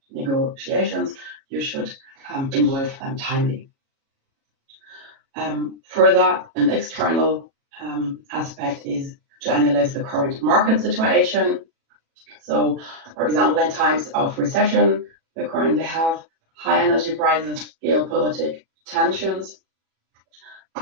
negotiations? You should involve them timely. Further, an external aspect is to analyze the current market situation. So, for example, in times of recession, we currently have high energy prices, geopolitical tensions.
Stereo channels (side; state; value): left; late; 37 ms